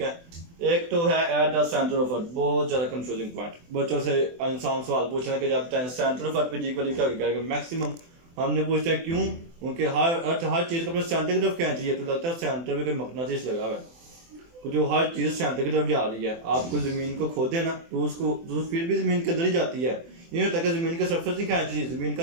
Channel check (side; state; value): left; late; 24 ms